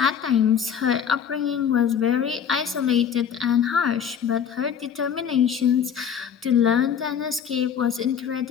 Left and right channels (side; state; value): right; quieter; 7.9 dB